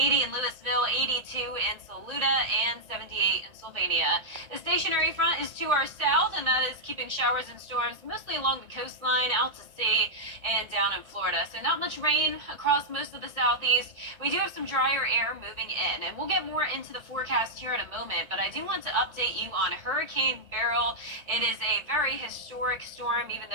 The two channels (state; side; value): late; left; 1.2 ms